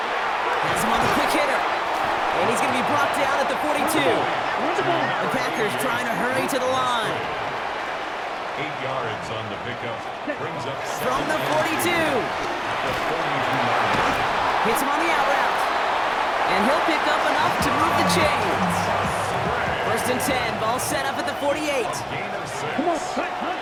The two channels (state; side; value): identical; both; correlation 1.00